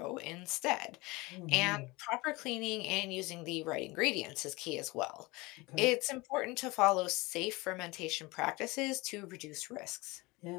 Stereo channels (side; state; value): right; quieter; 23.3 dB